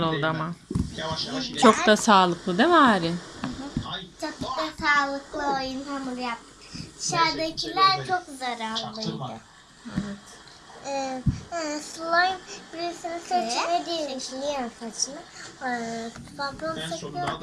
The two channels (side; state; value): both; identical; correlation 1.00